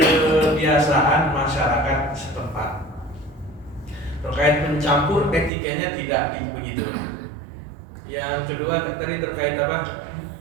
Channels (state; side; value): drops out; left; at 5.5 s